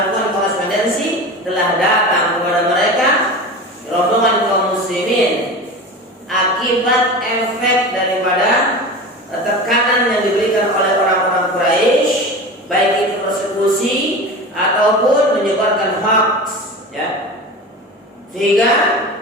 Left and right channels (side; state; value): both; normal; correlation 0.31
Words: korespondensi, telah datang kepada mereka rombongan kaum muslimin akibat efek daripada tekanan yang diberikan oleh orang-orang Quraisy, baik itu persekusi ataupun menyebarkan hoax, ya. Sehingga